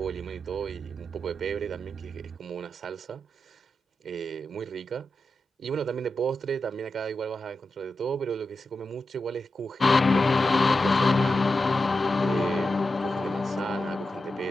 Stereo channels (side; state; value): both; normal; correlation 0.90